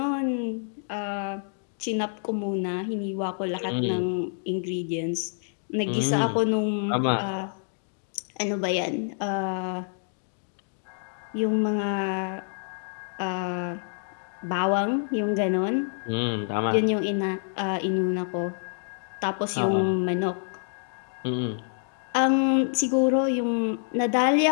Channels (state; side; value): silent; right; digital silence